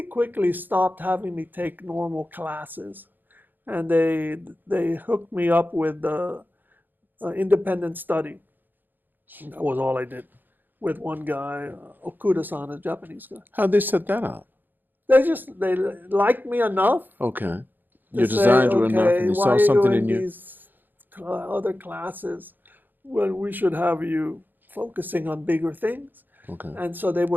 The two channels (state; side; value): late; left; 0.090 ms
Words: quickly stopped having me take normal classes. And they hooked me up with independent study. That was all I did with one guy, Okura-san, a Japanese guy. How'd they set that up? They liked me enough. Okay. To Your say, designs were enough, and they why saw are you something in in you. these other classes when we should have you focusing on bigger things? Okay. And so they